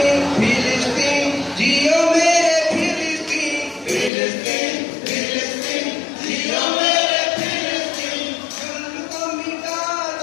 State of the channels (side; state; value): right; drops out; at 4.1 s